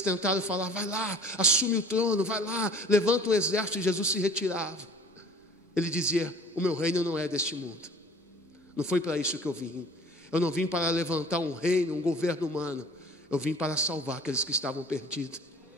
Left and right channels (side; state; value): both; normal; correlation 0.48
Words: tentaram falar: vai lá, assume o trono, vai lá, levanta um exército, e Jesus se retirava. Ele dizia: o meu reino não é deste mundo. Não foi para isso que eu vim. Eu não vim para levantar um reino, um governo humano. Eu vim para salvar aqueles que estavam perdidos.